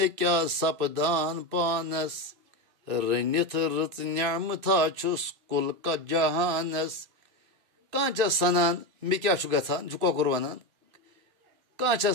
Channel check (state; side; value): late; left; 2.6 ms